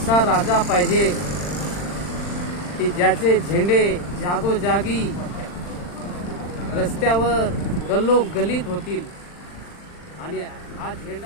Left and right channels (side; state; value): right; late; 40 ms